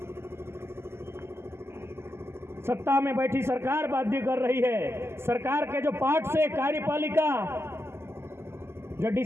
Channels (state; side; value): late; left; 0.12 ms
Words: सत्ता में बैठी सरकार बाध्य कर रही है। सरकार के जो पार्ट से कार्यपालिका, जो